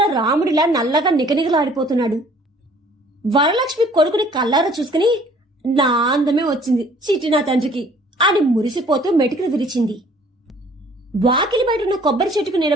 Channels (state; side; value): normal; both; correlation 0.56